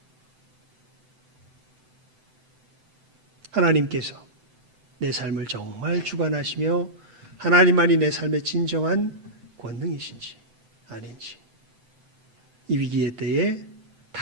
하나님께서 내 삶을 정말 주관하시며 하나님만이 내 삶의 진정한 권능이신지 아닌지, 이 위기의 때에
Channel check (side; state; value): left; late; 7.8 ms